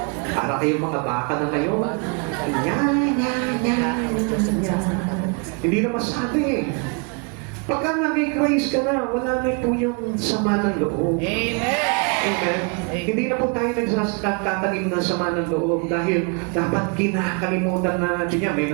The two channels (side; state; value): left; quieter; 34.9 dB